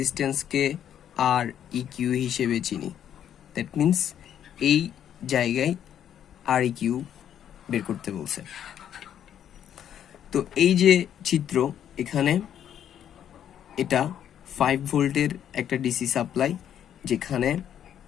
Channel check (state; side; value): quieter; right; 9.8 dB